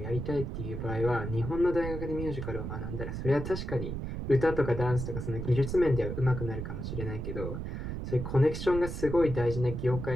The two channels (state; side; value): noise; right; rumble, 5 dB below the sound